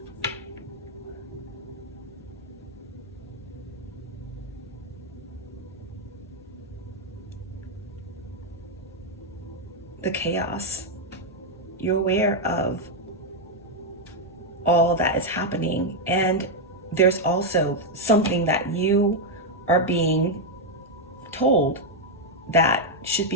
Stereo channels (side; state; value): both; normal; correlation 0.01